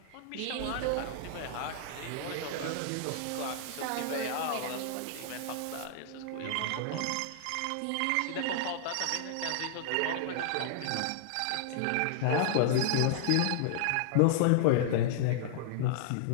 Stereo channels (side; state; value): both; different; correlation -0.01